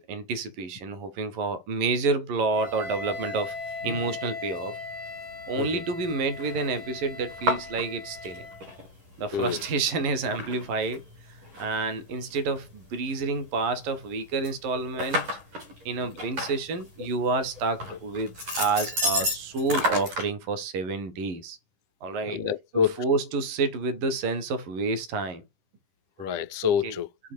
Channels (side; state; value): left; late; 11 ms